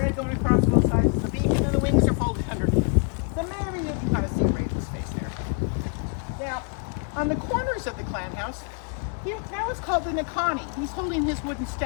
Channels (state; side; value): quieter; right; 38.7 dB